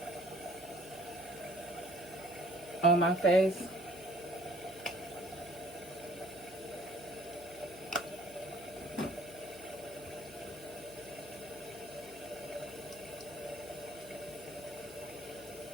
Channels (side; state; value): right; noise; hum, 22 dB below the sound